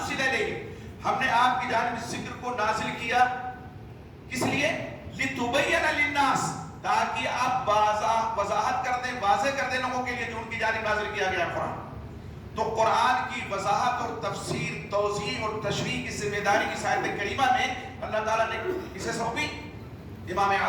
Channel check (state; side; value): identical; both; correlation 1.00